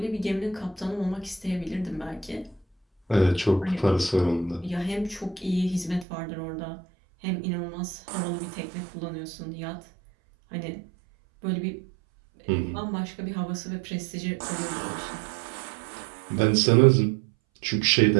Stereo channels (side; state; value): left; drops out; at 6.1 s